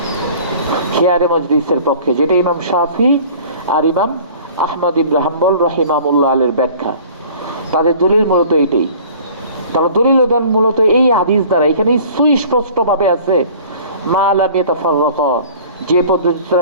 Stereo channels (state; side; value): inverted; both; correlation -0.47